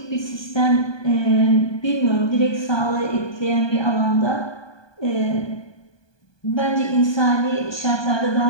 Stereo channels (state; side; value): late; right; 1.2 ms